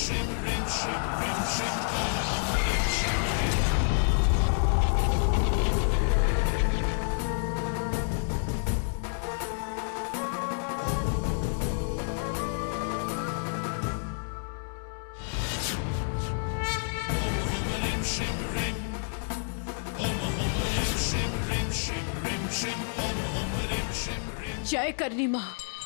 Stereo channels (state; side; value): silent; right; 59 dB below the other